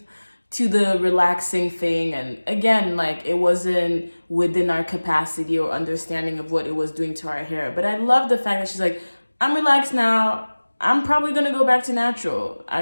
to the relaxing thing, and again, like, it wasn't within our capacity or understanding of what it was doing to our hair. But I love the fact that she's like, I'm relaxed now. I'm probably gonna go back to natural. I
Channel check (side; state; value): both; inverted; correlation -1.00